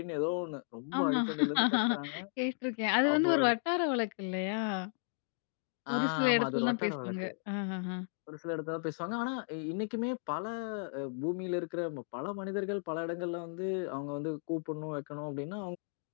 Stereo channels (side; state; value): right; silent; digital silence